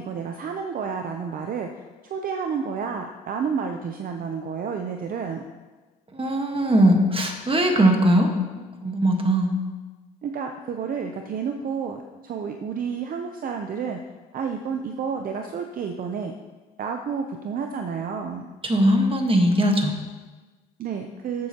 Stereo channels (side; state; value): both; normal; correlation 0.65